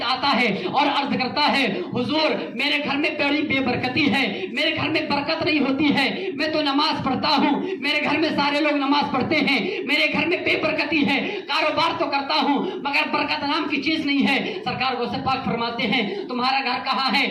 آتا ہے اور عرض کرتا ہے حضور میرے گھر میں بڑی بے برکتی ہے، میرے گھر میں برکت نہیں ہوتی ہے، میں تو نماز پڑھتا ہوں، میرے گھر میں سارے لوگ نماز پڑھتے ہیں، میرے گھر میں بے برکتی ہے، کاروبار تو کرتا ہوں مگر برکت نام کی چیز نہیں ہے۔ سرکار غوث پاک فرماتے ہیں تمہارا گھر کہاں ہے؟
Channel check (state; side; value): identical; both; correlation 1.00